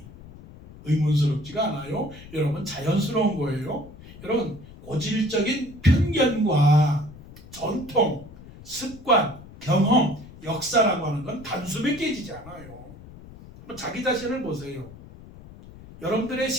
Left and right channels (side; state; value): left; noise; rumble, 18 dB below the sound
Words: 의문스럽지가 않아요? 여러분, 자연스러운 거예요. 여러분, 고질적인 편견과 전통, 습관, 경험, 역사라고 하는 건 단숨에 깨지지 않아요. 자기 자신을 보세요. 여러분들의